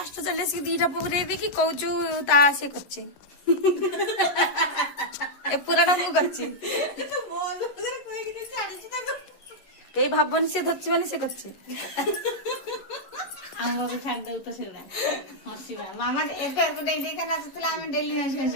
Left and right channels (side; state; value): right; late; 11 ms